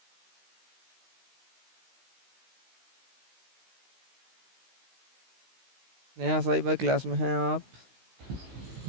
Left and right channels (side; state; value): left; late; 16 ms